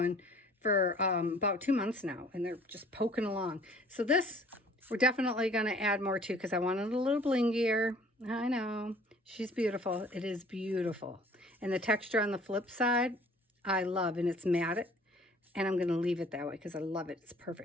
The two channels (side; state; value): both; normal; correlation 0.53